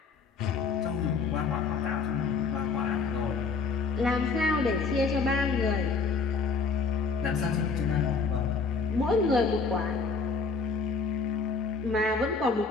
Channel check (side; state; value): right; quieter; 4.8 dB